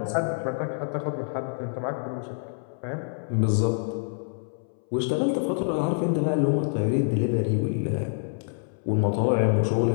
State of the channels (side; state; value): right; silent; 60 dB below the other